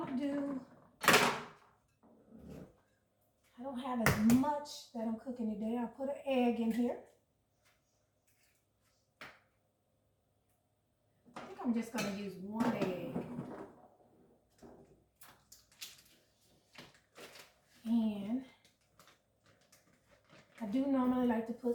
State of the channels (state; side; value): identical; both; correlation 1.00